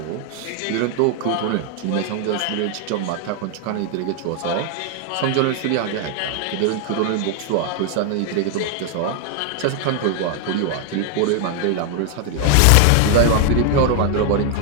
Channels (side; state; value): both; different; correlation 0.00